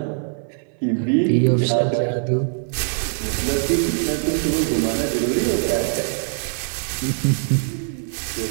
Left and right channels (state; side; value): silent; left; 64 dB below the other